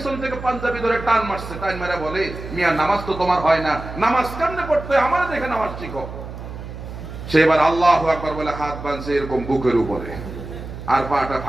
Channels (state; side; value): noise; right; hum, 10 dB below the sound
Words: থেকে পাঞ্জাবি ধরে টান মারছে, টান মেরে বলে মিয়া নামাজ তো তোমার হয় না, নামাজ কেমনে পড়তে আমারে দেখে নামাজ শিখো। সে এবার আল্লাহু আকবার বলে হাত বাঁধছে এরকম বুকের উপরে আর পাটা